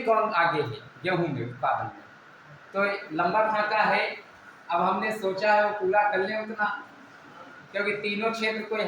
कौन आगे है गेहूँ में, उत्पादन में। तो लंबा खाका है, अब हमने सोचा है वो पूरा कर लें उतना, क्योंकि तीनों क्षेत्र कोई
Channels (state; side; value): identical; both; correlation 1.00